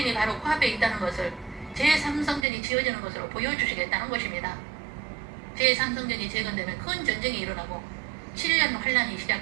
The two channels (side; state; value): left; drops out; at 2.5 s